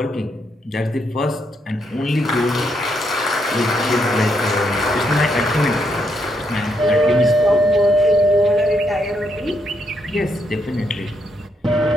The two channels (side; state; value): both; normal; correlation 0.77